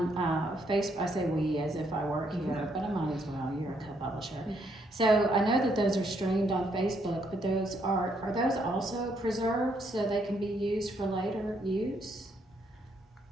Facebook. I say we as if I work here, but I might as well. You're a co-publisher. So I know that those are streamed on Facebook, but those are those also preserved so they can be used for later use?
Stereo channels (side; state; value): both; normal; correlation 0.73